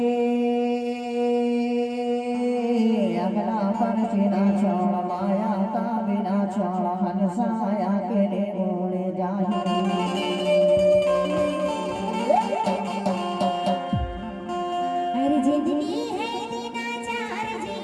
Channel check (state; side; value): identical; both; correlation 1.00